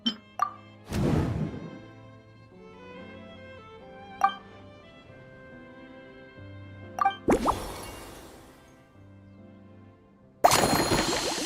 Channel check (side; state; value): both; identical; correlation 1.00